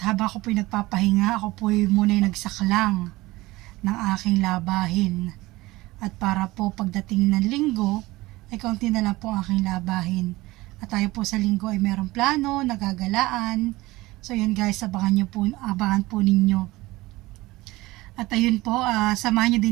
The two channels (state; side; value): quieter; left; 19.7 dB